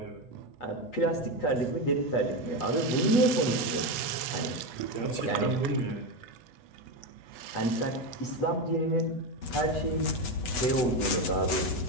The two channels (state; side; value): late; right; 8.1 ms